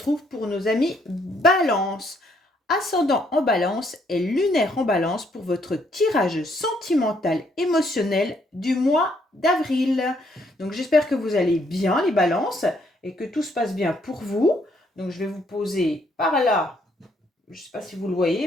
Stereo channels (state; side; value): normal; both; correlation 0.70